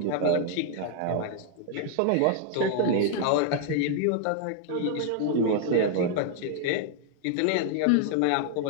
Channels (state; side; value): different; both; correlation 0.00